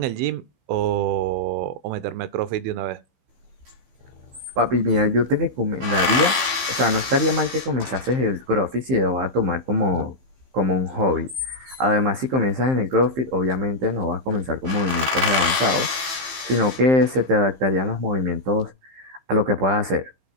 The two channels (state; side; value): late; left; 15 ms